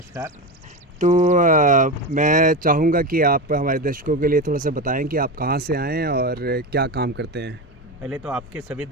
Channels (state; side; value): normal; both; correlation 0.19